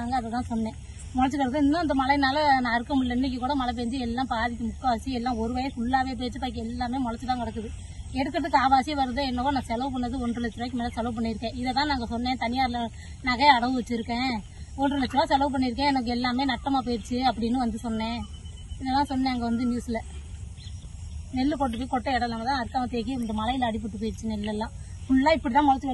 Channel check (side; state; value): both; identical; correlation 1.00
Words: அதை தான் சொன்னேன். முளைச்சி கிடக்கு. இன்னும் இந்த மழைனால நான் அறுக்க முடியல. இன்னைக்கு கூட மழை பெஞ்சு எல்லாம் பாதிக்கு முக்கால்வாசி எல்லாம் ஒரு வயசு ஃபுல்லாகவே போயிடுச்சு. பாக்கி எல்லாமே முளைச்சி தான் கிடக்குது. எடுக்கிறதுக்கு ஆவாசியே வருது. என்னவோ நான் செலவு பண்ணது 1,50,000 ரூபாய்க்கு மேலே செலவு பண்ணியிருக்கேன். இதை தான் நாங்கள் சொன்னேன். தனியாரில் நகை அடவு வச்சுருக்கேன், 1,50,000 ரூபா செலவு பண்ணியிருக்கேன், எனக்கு எல்லாமே நட்டமாக போயிடுச்சு அப்படின்னு வந்து சொன்னேன். இதெல்லாம் சொன்னேன். அங்கே வந்து நியூஸில் நெல் கொண்டு போய் கொட்டை இடம் இல்லாமல் தான் அறுக்காம தேக்கி இந்த மலையில் அடிபட்டு போயிடுச்சு. நெல்லெல்லாம் ஃபுல்லாக இப்படி தான் முளைச்சி